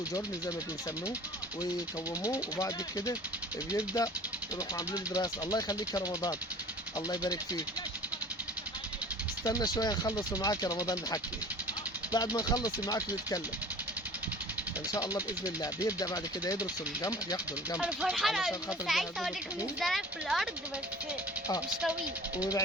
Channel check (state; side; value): normal; both; correlation 0.44